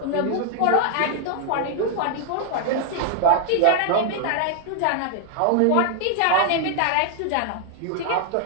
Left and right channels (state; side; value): different; both; correlation 0.00